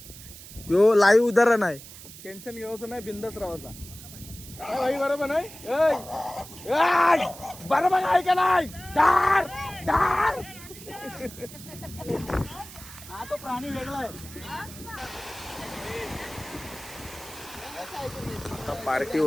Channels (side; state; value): right; noise; hiss, 16 dB below the sound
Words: यो लाईव्ह उदाहरण आहे. टेन्शन घ्यायचं नाही, बिंदास राहायचा. काय भाई, बरोबर नाही? बरोबर आहे का नाही? डार डार. हा तो प्राणी वेगळा आहे. पार्टी